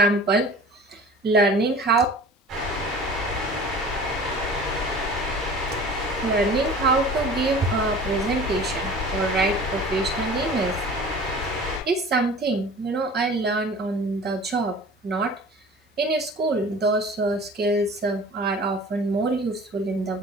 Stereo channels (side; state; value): both; normal; correlation 0.42